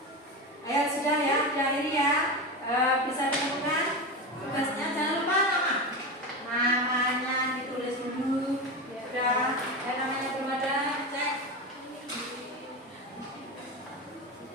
Ayo sudah ya, diakhiri ya. Bisa ditemukan tugasnya, jangan lupa namanya ditulis dulu. Sudah, namanya belum ada, cek.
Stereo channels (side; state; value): both; normal; correlation 0.21